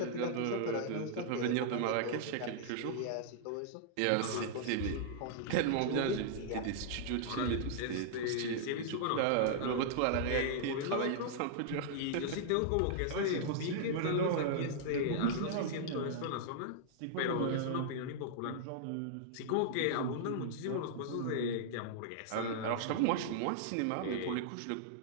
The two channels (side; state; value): both; different; correlation -0.01